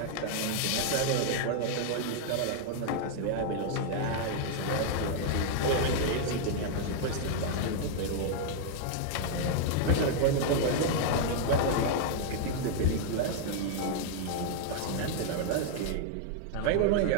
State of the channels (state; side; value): different; both; correlation 0.00